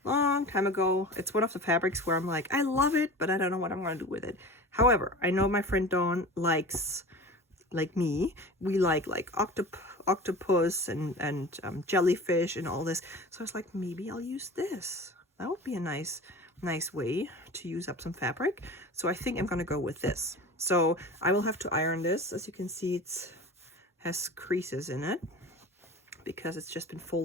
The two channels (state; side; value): normal; both; correlation 0.36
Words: long time ago. It's one of the fabrics where I'm like, I love it, but I don't know what I'm going to do with it. However, I know my friend Dawn likes, like me, we like octopus and jellyfish and all this. So I was like, maybe I'll use this. That would be a nice way to use up some fabric. So I think I'm going to go with this. So I will have to iron this. As you can see, it has creases in it because it's just been